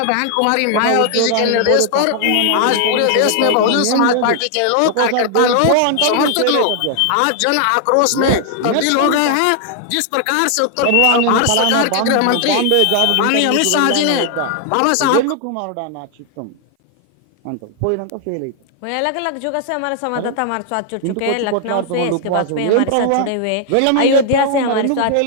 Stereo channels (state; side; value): different; both; correlation 0.00